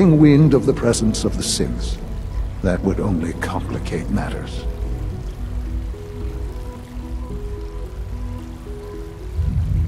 wind of the presence of the synths. That would only complicate matters.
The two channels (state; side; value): identical; both; correlation 1.00